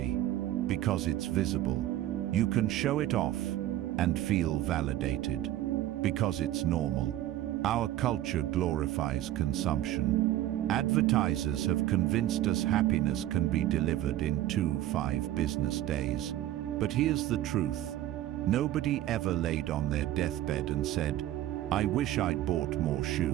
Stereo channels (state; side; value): quieter; left; 13.6 dB